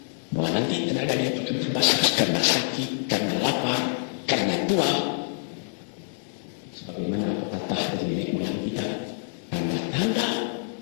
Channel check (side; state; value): right; silent; digital silence